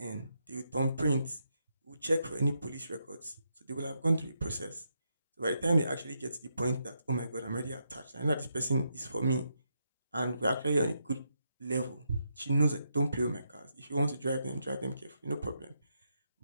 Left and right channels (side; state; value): both; inverted; correlation -0.81